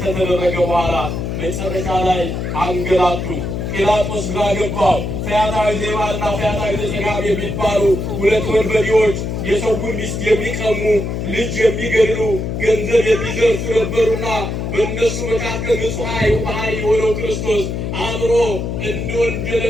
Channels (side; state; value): left; noise; hum, 3 dB below the sound